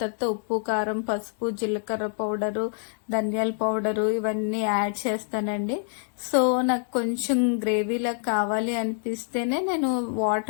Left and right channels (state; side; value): silent; right; 61 dB below the other